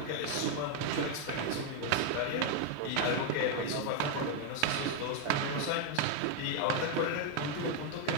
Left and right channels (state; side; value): different; both; correlation 0.01